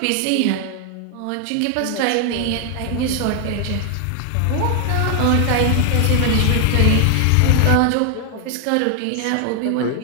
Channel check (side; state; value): both; different; correlation 0.00